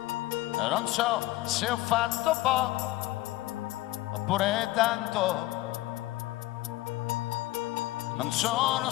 non so se ho fatto poco oppure tanto. Non sono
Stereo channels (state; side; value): quieter; right; 17.6 dB